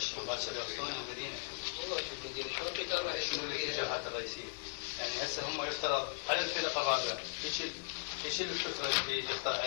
مباشرة يوصلون للمدينة. والله شوف المدينة شنو الاتجاهات الرئيسية؟ يعني هسه هم يفترض على الفرقة الرابعة يشيل الفكرة اللي يقطع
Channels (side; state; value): right; silent; 53 dB below the other